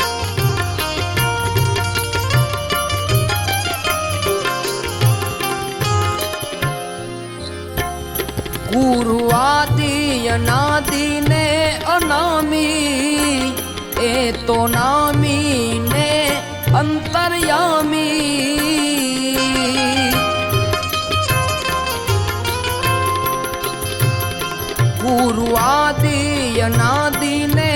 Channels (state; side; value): identical; both; correlation 1.00